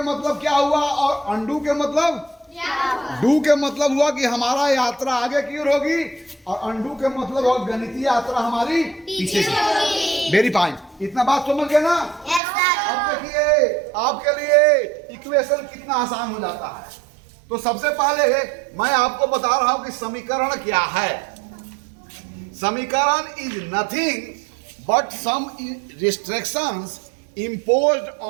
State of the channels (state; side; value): drops out; left; at 12.4 s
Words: मतलब क्या हुआ और अनडू के मतलब? डू के मतलब हुआ कि हमारा यात्रा आगे की ओर होगी, और अनडू के मतलब हुआ गणितीय यात्रा हमारी पीछे की। Very fine. इतना बात समझ गए ना? अब देखिए आपके लिए इक्वेशन कितना आसान हो जाता है। तो सबसे पहले मैं आपको बता रहा हूं कि समीकरण क्या है। समीकरण is nothing but some restrictions imposed